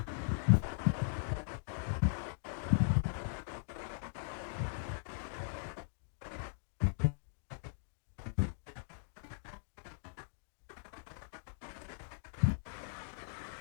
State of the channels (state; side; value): silent; right; digital silence